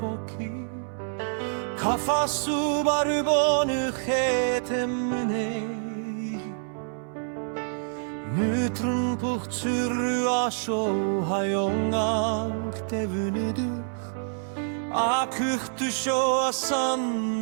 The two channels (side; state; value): left; silent; 60 dB below the other